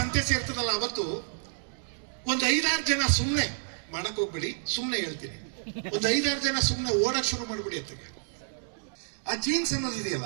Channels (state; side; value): silent; left; digital silence